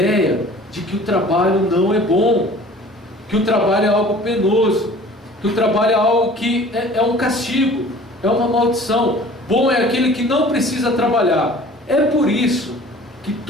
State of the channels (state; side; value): normal; both; correlation 0.47